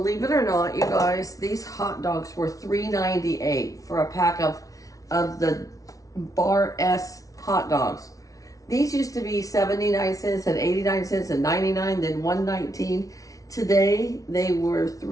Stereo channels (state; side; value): late; right; 0.17 ms